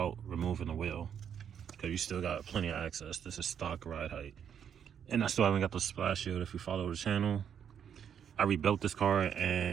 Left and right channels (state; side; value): quieter; left; 8.3 dB